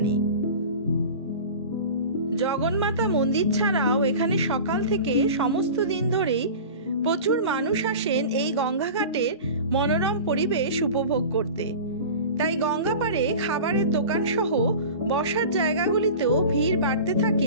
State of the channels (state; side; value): inverted; both; correlation -0.35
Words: জগন্মাতা মন্দির ছাড়াও এখানে সকাল থেকে সমস্ত দিন ধরেই প্রচুর মানুষ আসেন এই গঙ্গাঘাটের মনোরম পরিবেশ উপভোগ করতে। তাই গঙ্গা পাড়ে খাবারের দোকান সহ বসার জায়গাগুলিতেও ভিড় বাড়তে